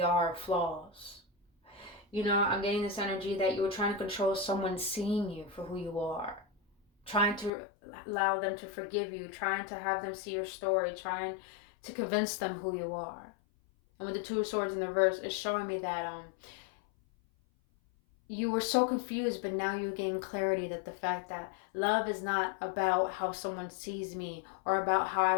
are, flaws. I'm getting this energy that you were trying to control someone seeing you for who you are. Trying to allow them to forgive you, trying to have them see your story, trying to convince them who you are. And with the Two of Swords in the reverse, it's showing me that you were so confused, but now you gain clarity that the fact that love is not about how someone sees me or about how I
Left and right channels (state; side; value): drops out; right; at 7.5 s